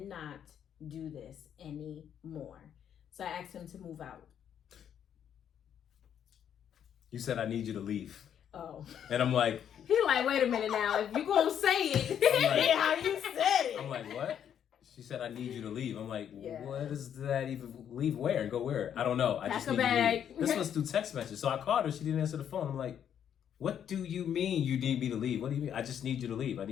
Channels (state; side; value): quieter; right; 9.1 dB